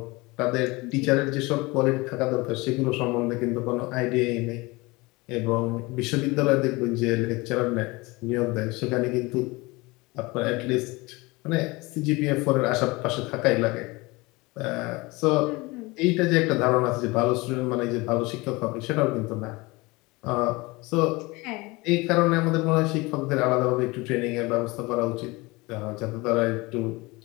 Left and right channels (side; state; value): right; quieter; 23.6 dB